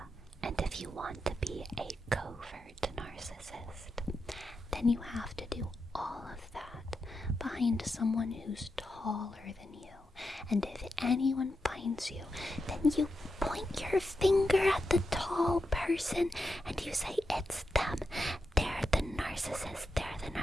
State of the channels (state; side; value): normal; both; correlation 0.87